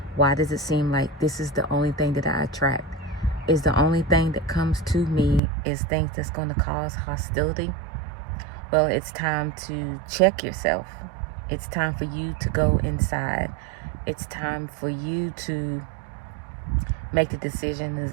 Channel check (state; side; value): drops out; left; at 5.4 s